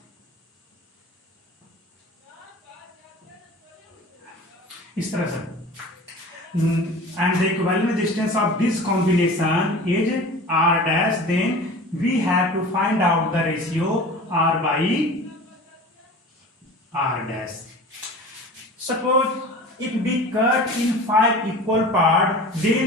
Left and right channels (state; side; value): normal; both; correlation 0.38